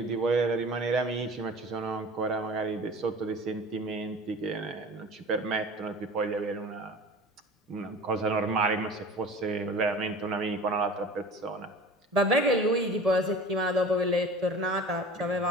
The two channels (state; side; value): normal; both; correlation 0.40